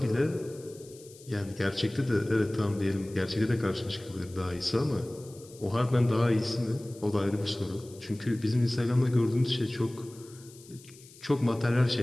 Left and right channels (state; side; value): noise; left; hiss, 22 dB below the sound